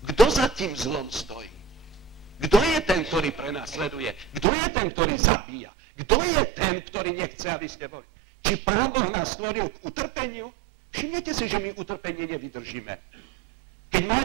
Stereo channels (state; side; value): drops out; left; at 4.5 s